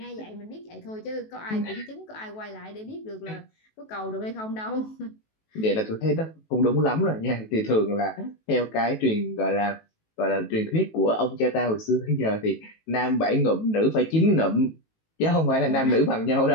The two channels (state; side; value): late; right; 18 ms